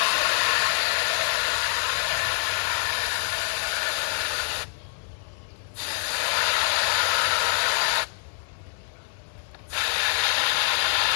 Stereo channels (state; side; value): silent; right; digital silence